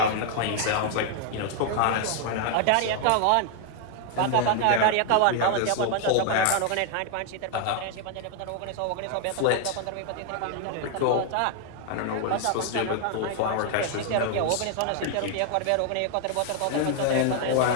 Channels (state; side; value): different; both; correlation 0.00